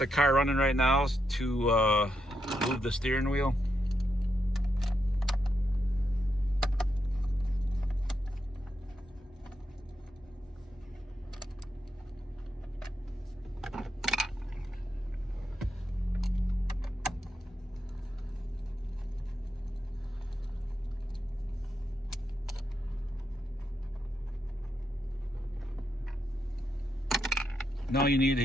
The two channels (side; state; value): both; normal; correlation 0.83